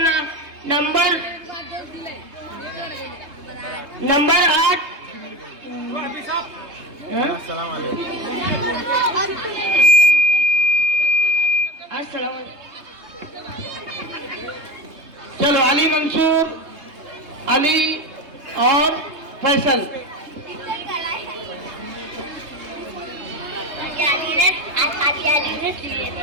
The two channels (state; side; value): late; left; 3.2 ms